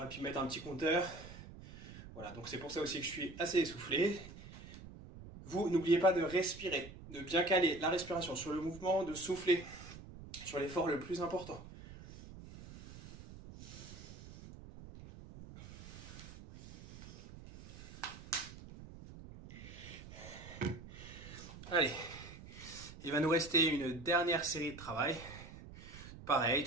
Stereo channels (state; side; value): noise; right; rumble, 14 dB below the sound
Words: pu mettre un petit compteur. Voilà, donc c'est pour ça aussi que je suis assez essoufflé. Vous, n'oubliez pas de respirer, de bien caler la respiration sur le mouvement, de souffler sur l'effort le plus important. Allez, il va nous rester une dernière série de travail. Pareil,